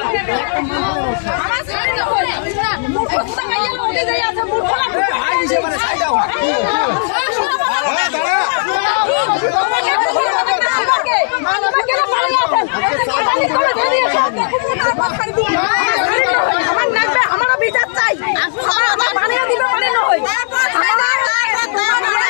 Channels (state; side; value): silent; right; digital silence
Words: আমারও বিচার চাই, আমার বানিয়ে দিবে মানে নয়।